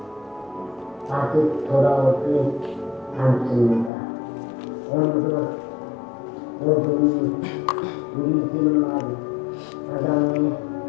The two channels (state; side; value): drops out; right; at 3.9 s